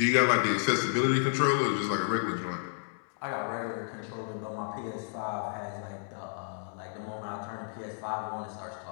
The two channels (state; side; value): silent; right; digital silence